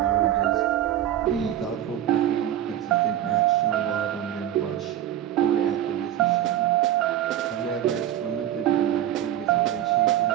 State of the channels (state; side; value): quieter; left; 11.7 dB